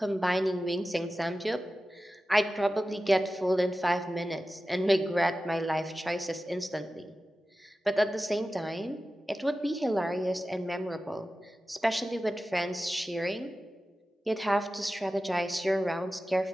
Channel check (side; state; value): both; normal; correlation 0.94